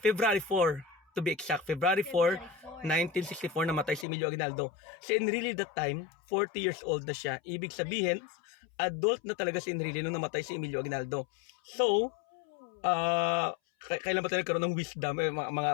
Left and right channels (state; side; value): drops out; right; at 4.0 s